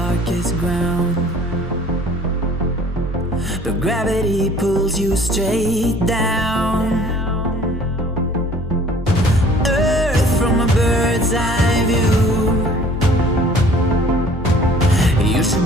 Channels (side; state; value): both; normal; correlation 0.51